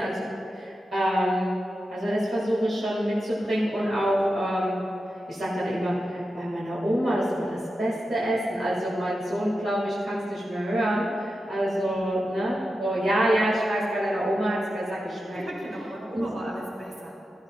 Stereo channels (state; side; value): normal; both; correlation 0.90